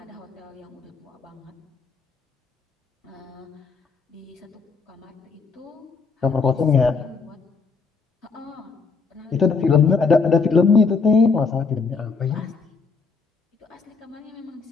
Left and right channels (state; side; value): quieter; right; 4.8 dB